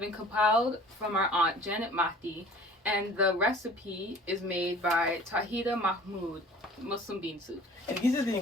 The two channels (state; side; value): normal; both; correlation 0.47